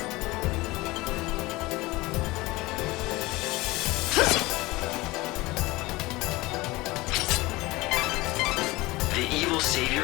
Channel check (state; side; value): quieter; right; 21.0 dB